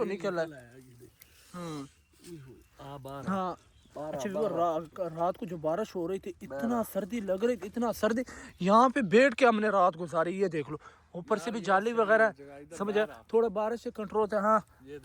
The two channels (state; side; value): identical; both; correlation 1.00